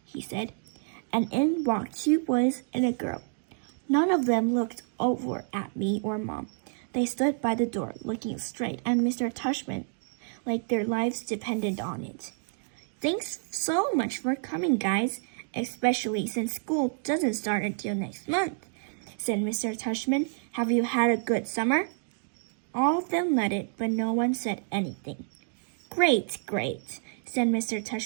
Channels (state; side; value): silent; left; 57 dB below the other